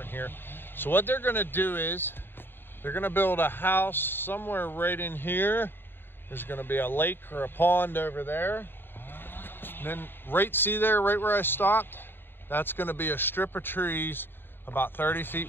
here. So what they're going to do is they're going to build a house somewhere right in here. There's going to be a lake or a pond over there, and then see there, right where I stopped, that's going to be a strip of trees about 30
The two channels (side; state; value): right; late; 0.10 ms